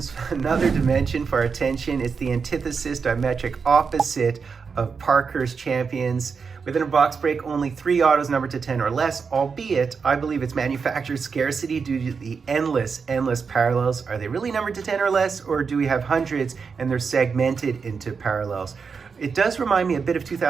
Another dimension for our attention. It's the antithesis, diametric opposite of Parker's Champions. Within a box break, only 3 autos numbered to 10 or less, albeit I believe it's manufacturer scarcity due to the endless parallels. Are they really numbered to 10 or less, or do we have hundreds and they're segmented into parallels? It does remind me a bit of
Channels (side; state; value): left; quieter; 5.5 dB